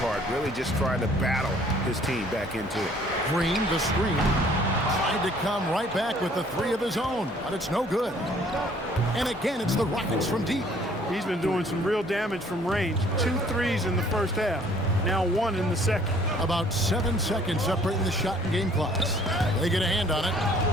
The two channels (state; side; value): normal; both; correlation 0.58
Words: part, really just trying to battle his team back into it. Green, the screen. Tried to come right back with the three of his own, but it's no good. And again, it's the Rockets from deep. He's been doing some real damage from range. 2 threes in the first half. Now 1 in the second. About 7 seconds separating the shot and game clocks. They get a hand on it.